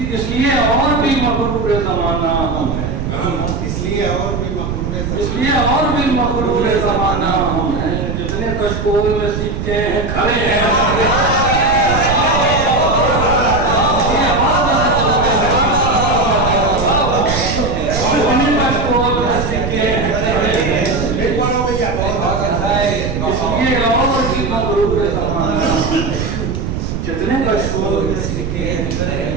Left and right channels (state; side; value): noise; right; rumble, 3 dB below the sound